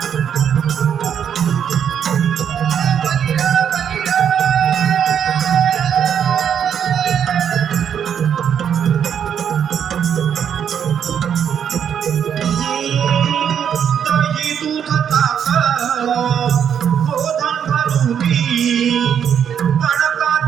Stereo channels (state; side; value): quieter; left; 8.4 dB